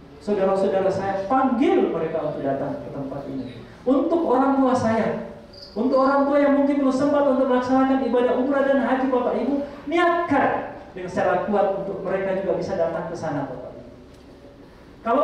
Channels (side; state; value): both; identical; correlation 1.00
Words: saudara-saudara saya, panggil mereka untuk datang ke tempat ini. Untuk orang tua saya, untuk orang tua yang mungkin belum sempat untuk melaksanakan ibadah umrah dan haji Bapak Ibu, niatkan dengan secara kuat untuk mereka juga bisa datang ke sana Bapak Ibu.